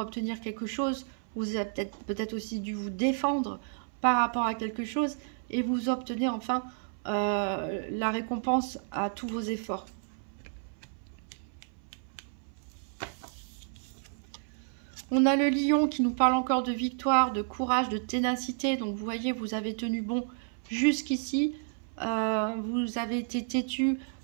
quelque chose, vous avez peut-être aussi dû vous défendre par rapport à quelque chose, et vous obtenez enfin la récompense à tous vos efforts. On a le lion qui nous parle encore de victoire, de courage, de ténacité. Donc vous voyez, vous avez tenu bon jusqu'ici. Vous avez été têtu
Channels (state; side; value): silent; left; 57 dB below the other